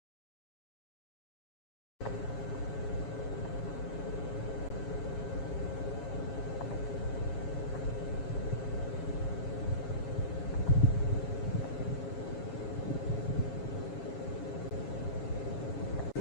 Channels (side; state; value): right; late; 7.2 ms